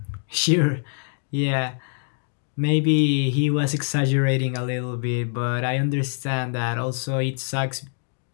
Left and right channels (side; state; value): right; silent; digital silence